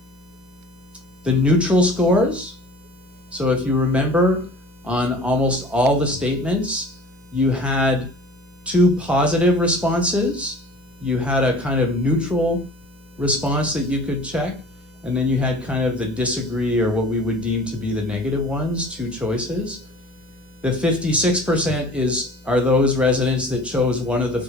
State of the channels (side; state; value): both; normal; correlation 0.44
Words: The neutral scores, so if you remember, on almost all the statements, you had 2 positive responses, you had a kind of neutral response that you could check, and then you had kind of the disagree, or what we would deem to be the negative ones, 2 choices. The 56% are those residents that chose one of the